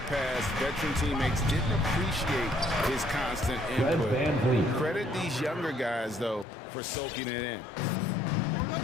past, veteran teammates didn't appreciate his constant input. Credit these younger guys, though, for soaking it in.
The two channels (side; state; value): right; drops out; at 6.5 s